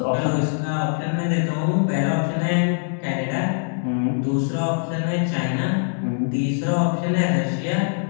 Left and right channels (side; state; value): right; silent; 64 dB below the other